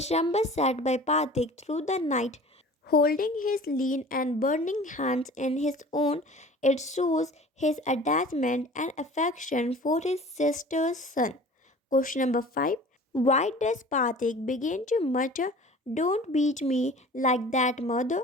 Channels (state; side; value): normal; both; correlation 0.44